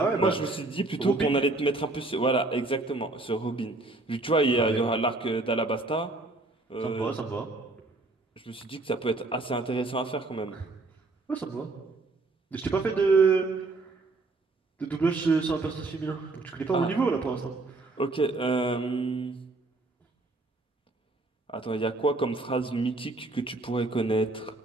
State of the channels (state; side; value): quieter; left; 3.2 dB